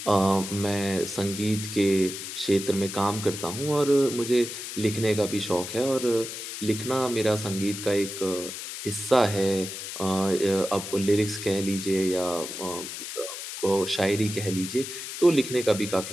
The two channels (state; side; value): noise; left; hiss, 8 dB below the sound